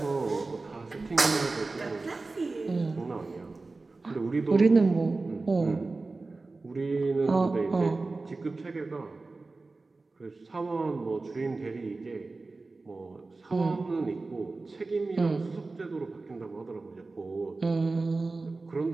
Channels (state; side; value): quieter; left; 3.5 dB